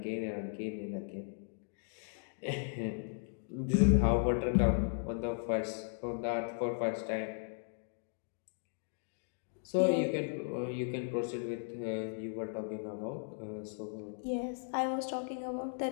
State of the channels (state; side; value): silent; right; digital silence